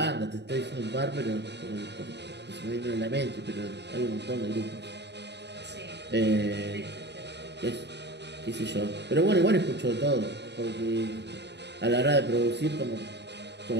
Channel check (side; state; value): left; late; 0.50 ms